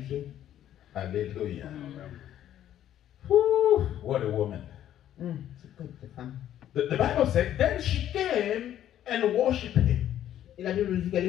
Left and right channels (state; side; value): quieter; right; 11.4 dB